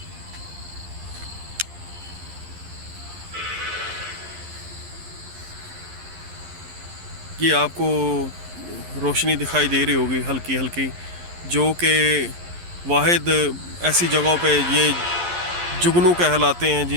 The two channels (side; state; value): left; late; 11 ms